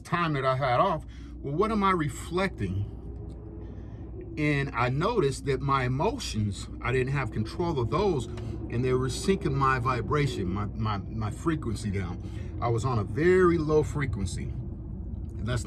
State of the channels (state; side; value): identical; both; correlation 1.00